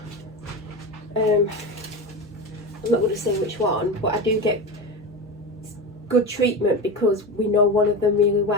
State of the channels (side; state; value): both; normal; correlation 0.23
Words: I'm not going to say which one, but I do get good treatment because we know one of them really